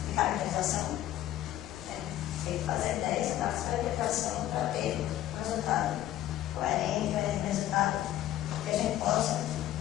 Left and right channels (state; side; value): quieter; right; 13.3 dB